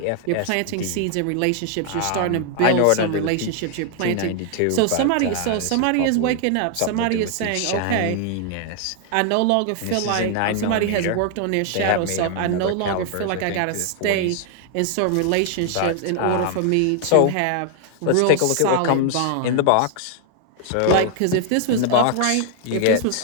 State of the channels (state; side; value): different; both; correlation 0.00